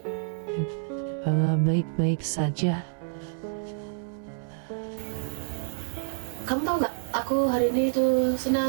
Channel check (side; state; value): left; silent; 59 dB below the other